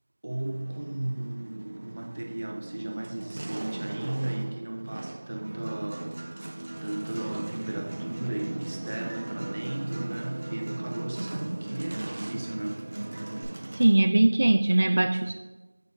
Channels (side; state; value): both; inverted; correlation -1.00